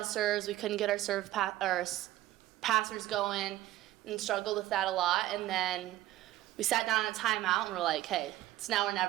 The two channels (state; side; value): quieter; left; 15.2 dB